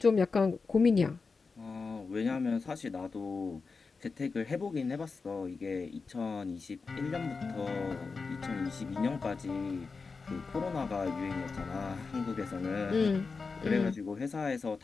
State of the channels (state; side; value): quieter; right; 4.5 dB